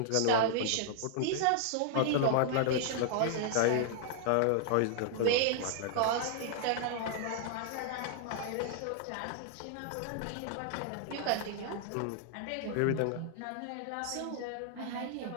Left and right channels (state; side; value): different; both; correlation 0.00